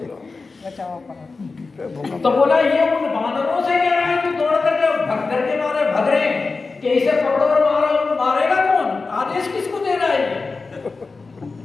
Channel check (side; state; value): right; quieter; 4.1 dB